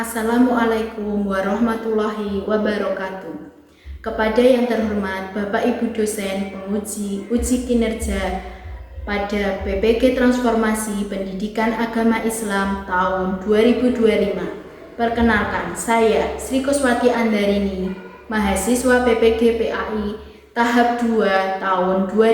warahmatullahi wabarakatuh. Kepada yang terhormat Bapak Ibu dosen penguji uji kinerja pada PPG Transformasi Pendidikan Agama Islam tahun 2025. Perkenalkan, saya Sri Kuswati Andarini, mahasiswa PPG PAI tahap 2 tahun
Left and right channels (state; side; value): identical; both; correlation 1.00